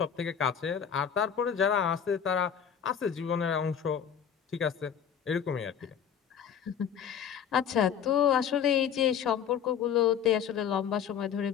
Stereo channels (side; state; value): right; quieter; 8.2 dB